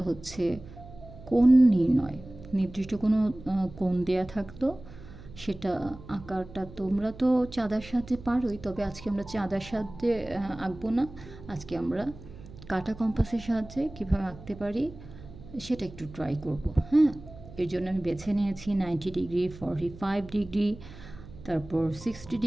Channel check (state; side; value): noise; right; hum, 17 dB below the sound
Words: হচ্ছে কোণ নির্ণয়। নির্দিষ্ট কোনো কোণ দেয়া থাকতো, সেটা আঁকাটা তোমরা তো চাঁদার সাহায্যে পারোই, তবে আজকে আমরা চাঁদার সাহায্যে আঁকবো না। আজকে আমরা কাটা কম্পাসের সাহায্যে কীভাবে আঁকতে পারি সেটা একটু ট্রাই করব। হ্যাঁ, এর জন্য আমি বেছে নিয়েছি 90 ডিগ্রি, 45 ডিগ্রি, তারপর 60